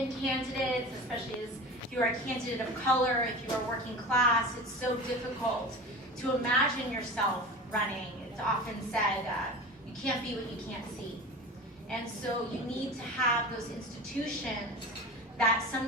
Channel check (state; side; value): normal; both; correlation 0.32